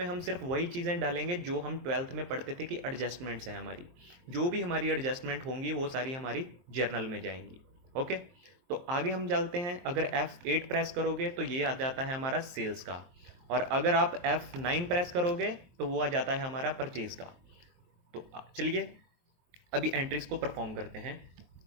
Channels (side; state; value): left; late; 23 ms